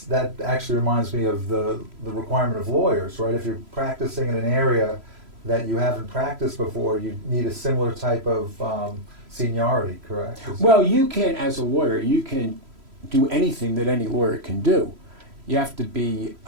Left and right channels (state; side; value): late; left; 3.0 ms